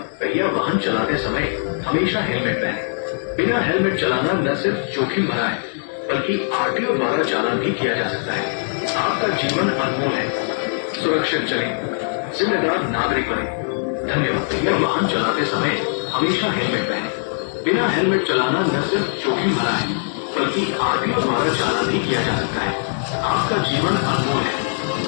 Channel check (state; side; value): silent; right; digital silence